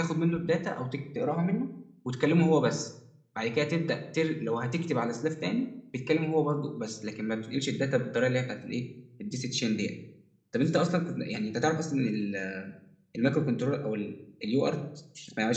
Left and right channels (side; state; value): both; identical; correlation 1.00